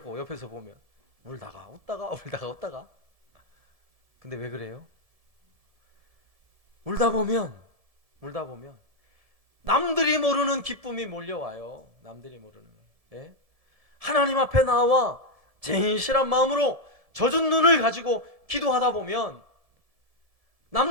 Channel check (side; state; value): left; late; 1.7 ms